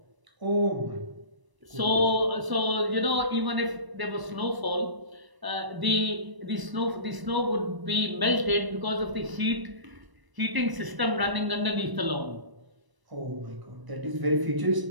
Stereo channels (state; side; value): late; left; 1.0 ms